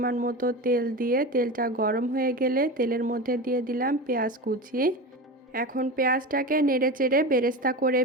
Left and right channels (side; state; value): both; normal; correlation 0.26